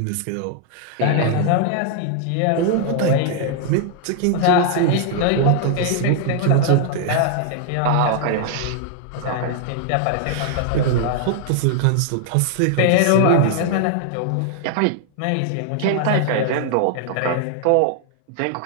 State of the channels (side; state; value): both; different; correlation 0.00